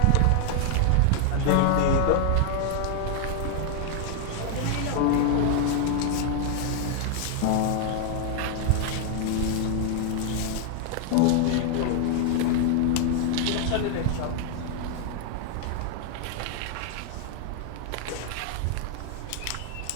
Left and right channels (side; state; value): both; different; correlation 0.00